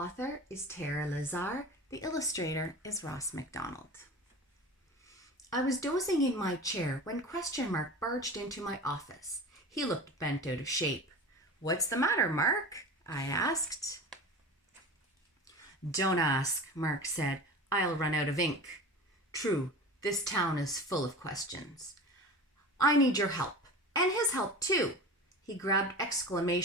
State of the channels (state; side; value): normal; both; correlation 0.33